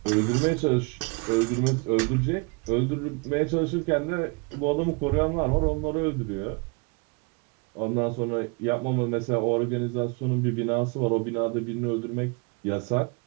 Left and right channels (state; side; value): quieter; left; 30.2 dB